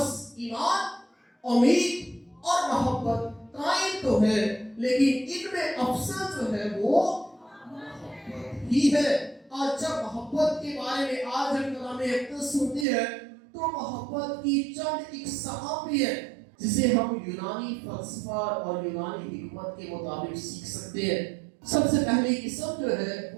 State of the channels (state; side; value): drops out; left; at 12.9 s